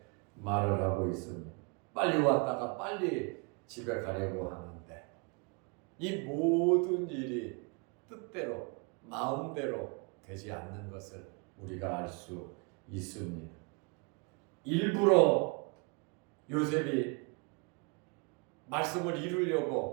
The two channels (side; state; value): left; quieter; 33.2 dB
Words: 말을 하고 있습니다. 빨리 왔다가 빨리 집에 가려고 하는데 이 모든 일이 뜻대로 마음대로 되지 않는 것을 우리가 알 수 있습니다. 일부러 요셉이 말씀을